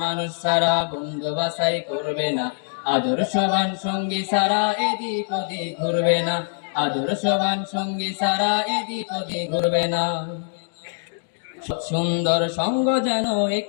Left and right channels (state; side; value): silent; right; 63 dB below the other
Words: মানুষ ছাড়া বন্ধু বাছাই করবে না, আদর্শবান সঙ্গী ছাড়া এদিক ওদিক ঘুরবে না। আদর্শবান সঙ্গী ছাড়া এদিক ওদিক ঘুরবে না। সুন্দর সঙ্গ যেন